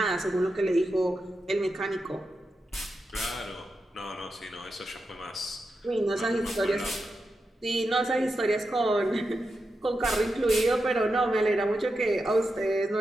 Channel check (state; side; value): normal; both; correlation 0.88